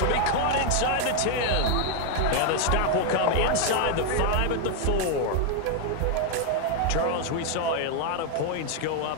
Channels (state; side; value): different; both; correlation 0.00